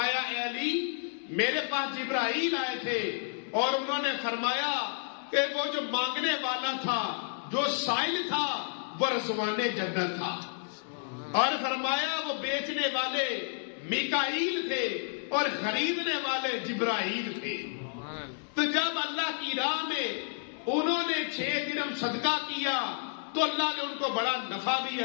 اے علی میرے پاس جبرائیل آئے تھے اور انہوں نے فرمایا کہ وہ جو مانگنے والا تھا، جو سائل تھا، وہ رضوان جنت تھا، اور فرمایا وہ بیچنے والے میکائیل تھے اور خریدنے والے جبرائیل تھے۔ تو جب اللہ کی راہ میں انہوں نے 6 درہم صدقہ کیا تو اللہ نے ان کو بڑا نفع بھی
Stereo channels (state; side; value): silent; right; digital silence